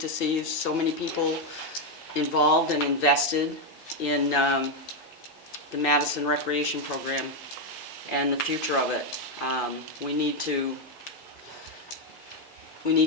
to see so many people involved and invested in the Madison Recreation Program and the future of it. We need to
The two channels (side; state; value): both; normal; correlation 0.03